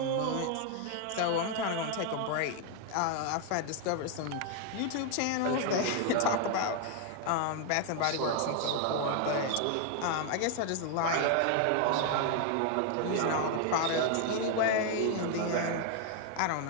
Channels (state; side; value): different; both; correlation 0.00